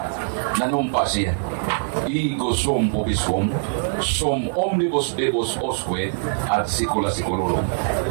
nanumpa siya. Ego sum pubisum, sum omnibus debus osque ad secula seculorum.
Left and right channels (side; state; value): left; silent; 64 dB below the other